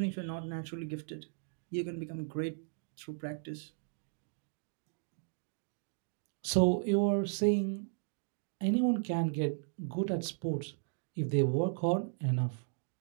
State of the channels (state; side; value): silent; left; digital silence